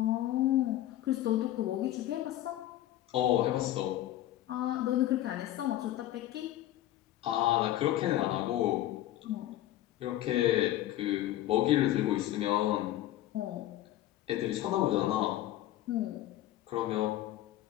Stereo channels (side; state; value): right; quieter; 13.9 dB